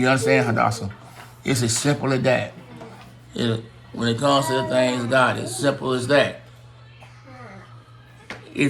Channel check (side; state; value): both; identical; correlation 1.00